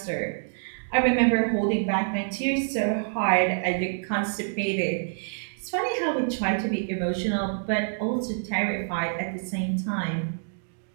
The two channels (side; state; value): left; silent; digital silence